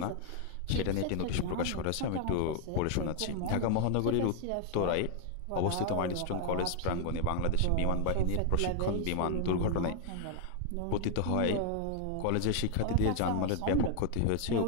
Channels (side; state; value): both; different; correlation 0.00